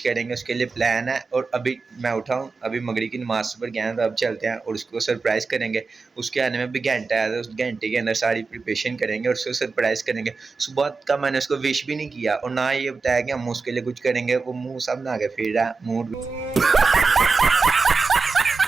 करेंगे। उसके लिए प्लान है और अभी मैं उठा हूँ, अभी मगरिब की नमाज़ पर गया है, तो अब चलते हैं और उसको सरप्राइज़ करेंगे। उसके आने में भी घंटा है, तो उस घंटे के अंदर सारी प्रिपरेशन करेंगे और उसको सरप्राइज़ करेंगे। सुबह का मैंने उसको विश भी नहीं किया और ना ये बताया कि हम उसके लिए कुछ करेंगे। वो मुँह सब ना आगे फिर रहा है, मूड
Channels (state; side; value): quieter; left; 4.3 dB